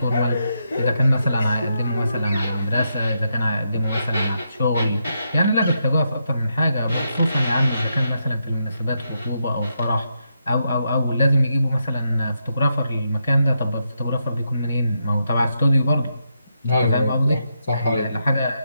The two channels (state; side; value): inverted; both; correlation -0.82